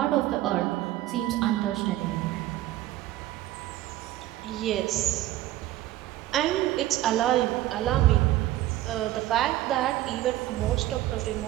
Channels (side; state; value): left; quieter; 15.0 dB